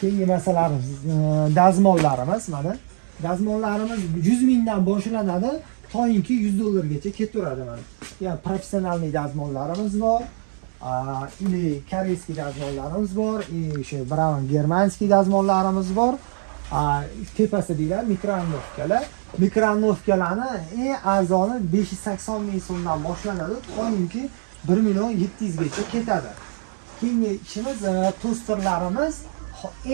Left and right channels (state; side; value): silent; left; 56 dB below the other